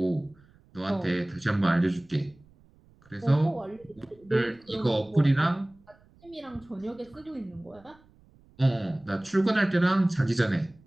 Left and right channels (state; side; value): noise; right; rumble, 29 dB below the sound